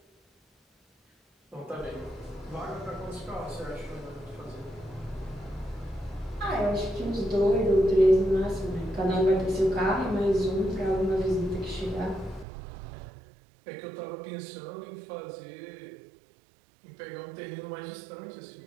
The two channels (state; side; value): drops out; left; at 12.5 s